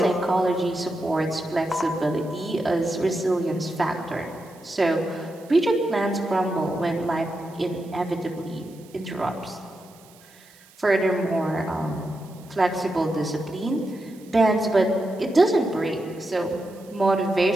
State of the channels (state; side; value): noise; right; hiss, 26 dB below the sound